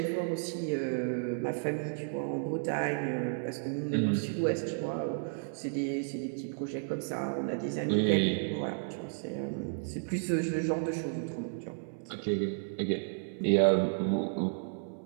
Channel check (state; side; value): silent; left; 56 dB below the other